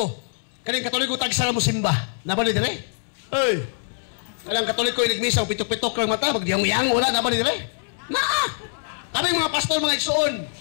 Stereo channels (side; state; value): right; silent; digital silence